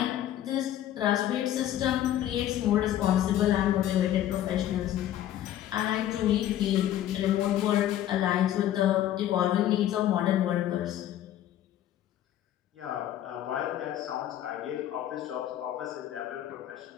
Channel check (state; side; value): quieter; right; 12.1 dB